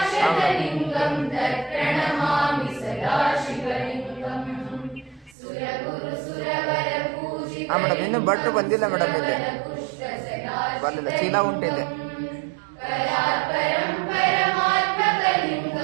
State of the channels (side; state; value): left; drops out; at 5.4 s